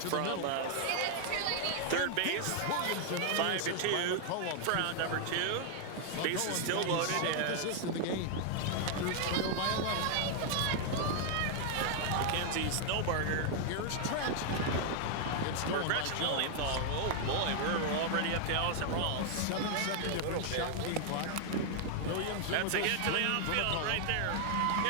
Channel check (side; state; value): both; different; correlation 0.00